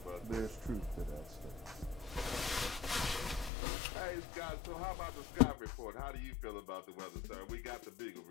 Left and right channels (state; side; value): drops out; right; at 3.5 s